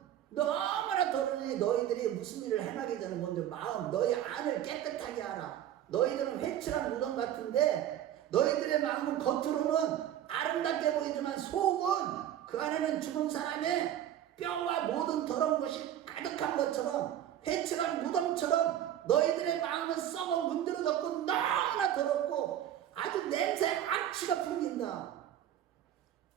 너무나 더러니 너희들이 무슨 일을 행하기 전에 먼저 너희 안을 깨끗하게 하라. 너희들은 회칠한 무덤 같은데 너희들의 마음은 겉으로는 아름답게 보이지만 속은 그 안에는 죽은 사람의 뼈와 모든 더러운 것이 가득한 것처럼 회칠한 무덤처럼 너희들의 마음은 썩어 문드러졌고 너무나 더럽고 아주 냄새 악취가 풍긴다.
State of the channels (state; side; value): quieter; left; 11.3 dB